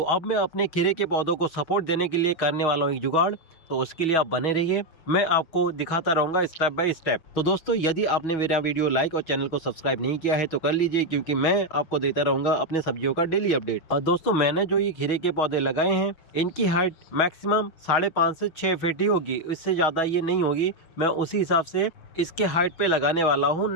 अब मैं अपने खीरे के पौधों को सपोर्ट देने के लिए करने वाला हूँ एक जुगाड़। तो उसके लिए आप बने रहिए, मैं आपको दिखाता रहूँगा स्टेप बाय स्टेप। तो दोस्तों यदि आपने मेरा वीडियो लाइक और चैनल को सब्सक्राइब नहीं किया है तो कर लीजिए, क्योंकि मैं आपको देता रहूँगा अपने सब्जियों का डेली अपडेट। और दोस्तों मैंने जो ये खीरे के पौधे लगाए हैं, इनकी हाइट मैक्सिमम 5.5 से 6 फीट ही होगी, इससे ज़्यादा ये नहीं होगी। मैं उसी हिसाब से इसके हाइट पे लगाने वाला हूँ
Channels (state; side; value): late; right; 6.2 ms